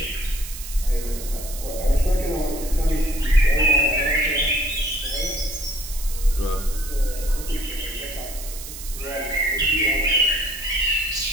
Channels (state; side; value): noise; right; hiss, 11 dB below the sound